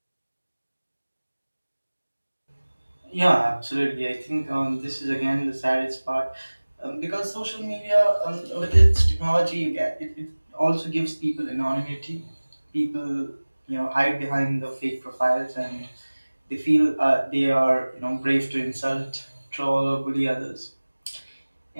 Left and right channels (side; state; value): both; inverted; correlation -1.00